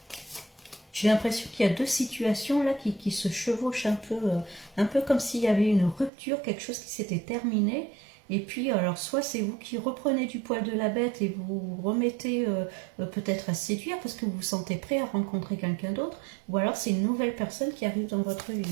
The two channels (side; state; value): left; drops out; at 6.1 s